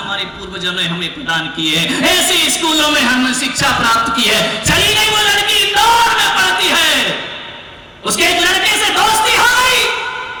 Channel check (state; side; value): identical; both; correlation 1.00